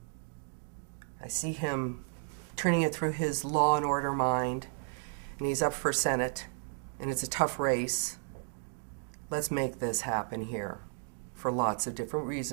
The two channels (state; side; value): silent; left; 56 dB below the other